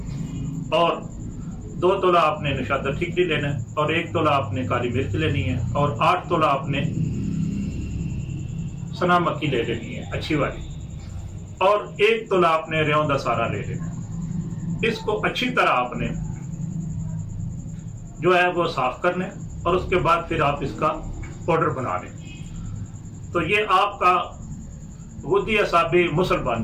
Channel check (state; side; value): identical; both; correlation 1.00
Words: اور 2 تولہ آپ نے نشادر ٹھیکری لینا ہے اور 1 تولہ آپ نے کالی مرچ لینی ہے اور 8 تولہ آپ نے سنا مکی لے لینی ہے اچھی والی اور 1 تولہ آپ نے ریون دا سارا لے لینا ہے۔ اس کو اچھی طرح آپ نے جو ہے وہ صاف کرنا ہے اور اس کے بعد پھر آپ اس کا پاؤڈر بنا لیں تو یہ آپ کا غدی اعصابی مسل